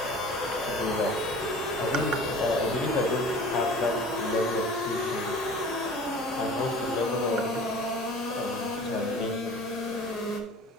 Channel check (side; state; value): both; normal; correlation 0.43